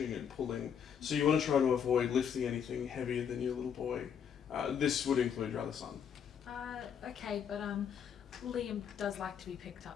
and pulling. So you want to try to avoid lifting anything heavier than your little boy This would include your other son. Okay, but Liam does like to be picked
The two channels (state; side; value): quieter; right; 7.9 dB